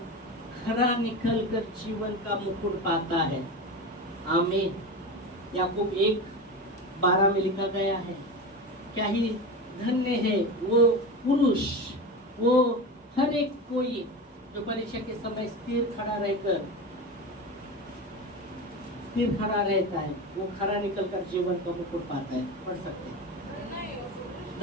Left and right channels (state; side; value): normal; both; correlation 0.25